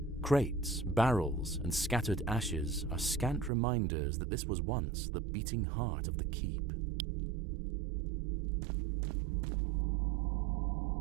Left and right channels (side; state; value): left; drops out; at 3.5 s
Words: Crates, barrels, and scattered ashes are scant reminders that this was once the beating heart of the keep.